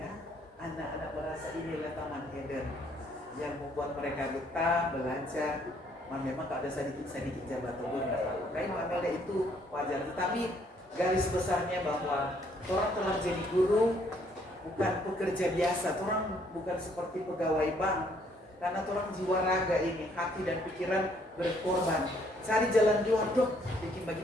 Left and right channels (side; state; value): both; normal; correlation 0.66